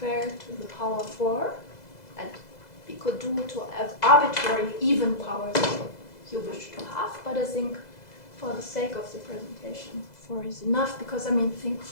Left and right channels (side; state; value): right; late; 2.0 ms